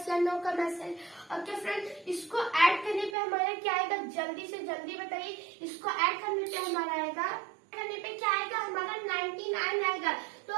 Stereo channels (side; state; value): left; drops out; at 3.2 s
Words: या नो का मैसेज। ओके फ्रेंड्स इसको ऐड करने पे हमारा क्या आएगा, जल्दी से जल्दी बताइए, इसको ऐड करने पे हमारा आएगा, करने पे क्या आएगा हमारा 99 आएगा। तो